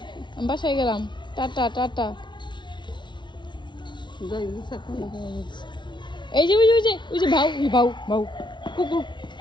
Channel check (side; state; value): right; late; 0.23 ms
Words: বাসায় গেলাম। Tata tata. এই যে ওই যে ভাউ ভাউ ভাউ কুকুর